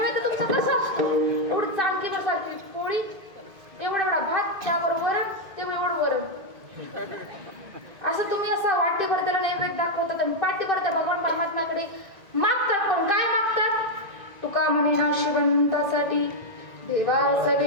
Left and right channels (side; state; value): left; late; 2.5 ms